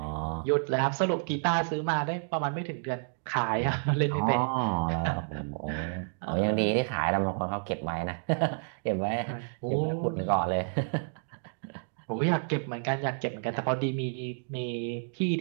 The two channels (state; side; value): silent; left; digital silence